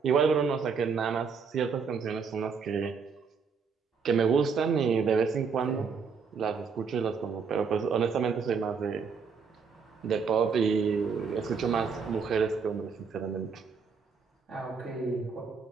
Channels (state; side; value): quieter; left; 5.7 dB